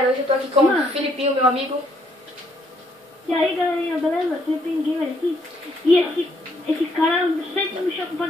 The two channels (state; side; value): normal; both; correlation 0.70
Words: hoje eu tô aqui com o Filipinho, meu amigo. E aí galerinha, beleza? Filipinho Gamer aqui. E esse cara sempre me chama pra